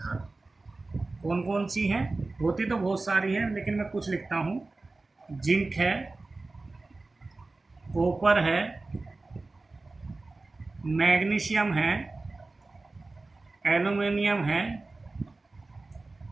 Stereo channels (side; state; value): left; quieter; 3.4 dB